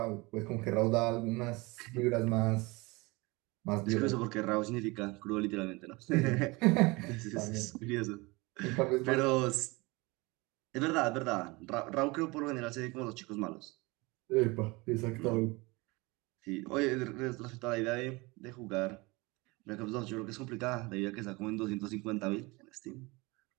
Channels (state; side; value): quieter; left; 24.5 dB